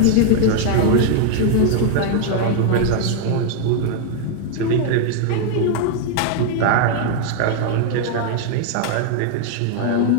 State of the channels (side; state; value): both; different; correlation 0.00